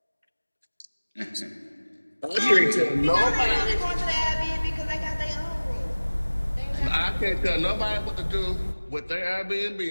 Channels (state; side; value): inverted; both; correlation -1.00